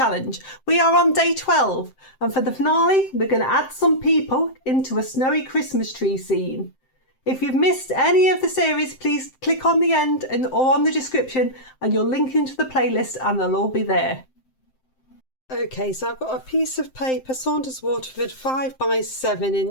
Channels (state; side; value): late; right; 7.7 ms